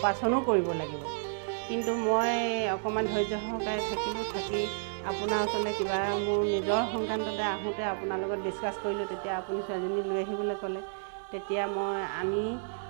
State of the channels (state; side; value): silent; left; digital silence